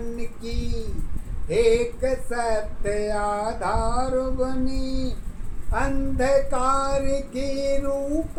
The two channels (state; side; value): identical; both; correlation 1.00